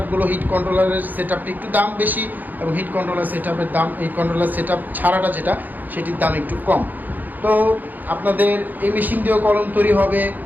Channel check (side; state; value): left; late; 0.084 ms